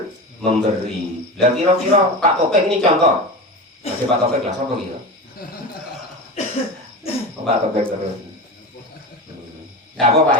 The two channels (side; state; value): both; normal; correlation 0.26